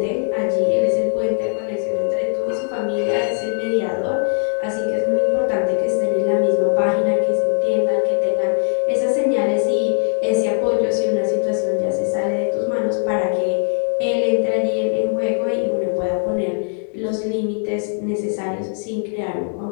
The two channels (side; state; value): right; silent; digital silence